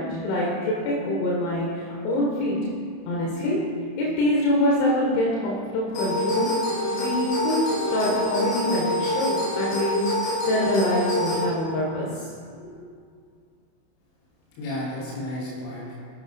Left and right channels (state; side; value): late; right; 31 ms